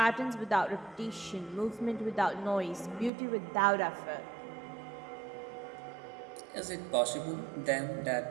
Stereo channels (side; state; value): left; drops out; at 3.1 s